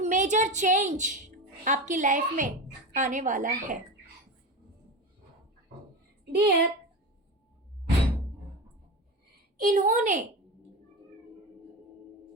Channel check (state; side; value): normal; both; correlation 0.24